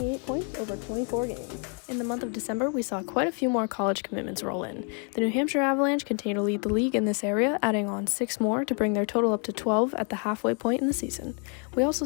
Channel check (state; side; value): quieter; right; 38.4 dB